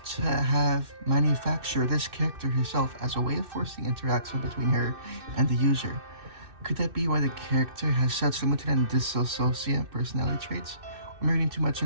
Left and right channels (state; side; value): late; left; 2.6 ms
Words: to have manufactured this character herself as a way of forcing interaction between her and the user. Could that be why the character has such limited and dissociative personality traits? I'm reading too much